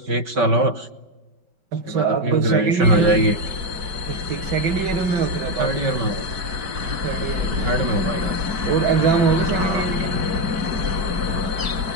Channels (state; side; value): late; left; 4.6 ms